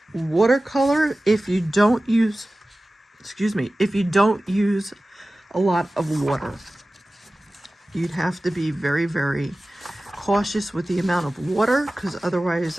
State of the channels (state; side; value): normal; both; correlation 0.96